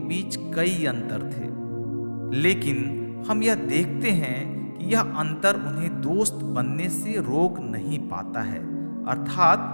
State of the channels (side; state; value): both; inverted; correlation -1.00